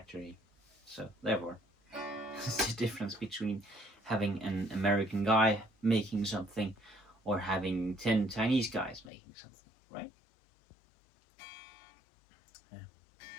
So therefore, it's the difference between having an American guy making something or having 10 Chinese guys making something, right? Yeah.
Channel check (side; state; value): right; drops out; at 9.1 s